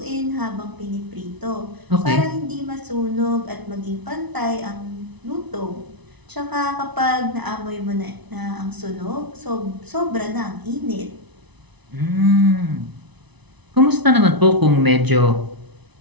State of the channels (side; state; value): left; late; 1.0 ms